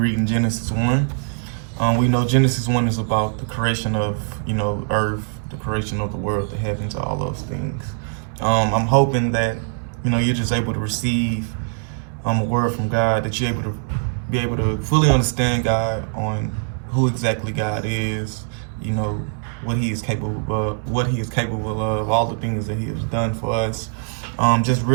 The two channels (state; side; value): silent; left; 64 dB below the other